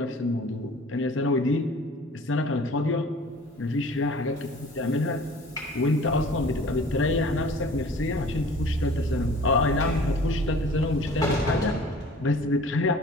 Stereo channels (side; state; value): both; normal; correlation 0.47